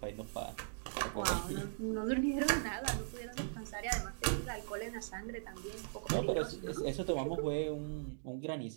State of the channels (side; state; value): left; silent; digital silence